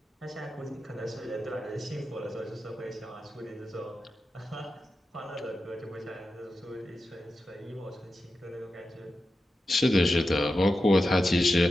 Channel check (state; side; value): normal; both; correlation 0.91